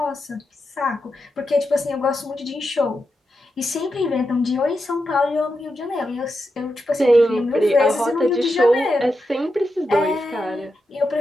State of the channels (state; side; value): normal; both; correlation 0.87